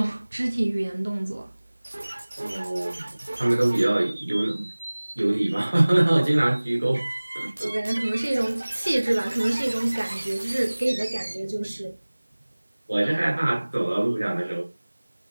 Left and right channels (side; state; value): both; inverted; correlation -1.00